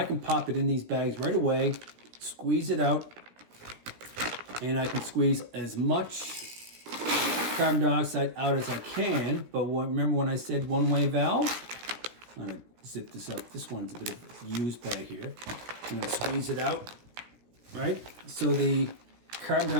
can pop it in these bags right away, squeeze it out, and I can squeeze as much carbon dioxide out as I can. But remember when I said one-way valve? I'm going to zip this up. This one's a bit of a used bag here. I'm going to squeeze it out, right? So the carbon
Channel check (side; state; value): left; late; 17 ms